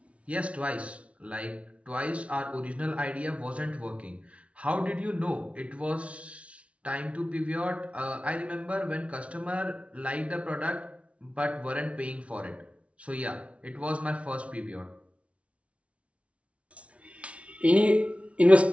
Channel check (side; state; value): left; late; 0.063 ms